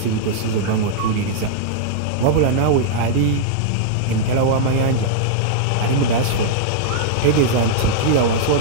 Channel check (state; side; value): different; both; correlation -0.01